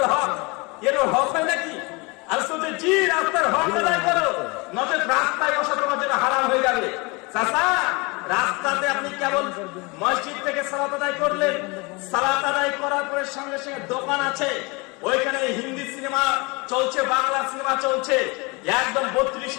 হক, এরও হক হয় নাকি? আর শুধু জি রাস্তার হক আদায় করো, নচেত রাস্তায় বসা তোমার জন্য হারাম হয়ে যাবে। চাচা রাস্তাতে আপনি কেবল মসজিদ থেকে সালাত আদায় করলেন, সালাত আদায় করার পরে সঙ্গে সঙ্গে দোকান আছে, ওইখানে হিন্দি সিনেমা চলছে, বাংলা সিনেমা চলছে, একদম 32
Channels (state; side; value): quieter; right; 27.3 dB